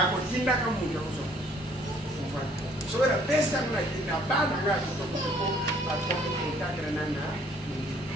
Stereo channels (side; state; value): both; normal; correlation 0.60